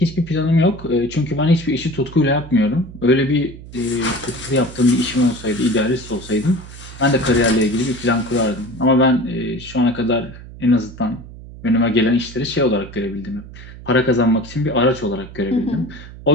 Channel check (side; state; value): right; noise; hum, 16 dB below the sound